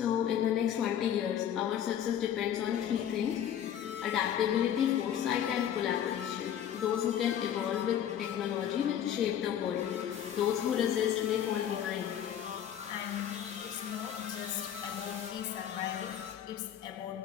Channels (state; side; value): quieter; right; 9.9 dB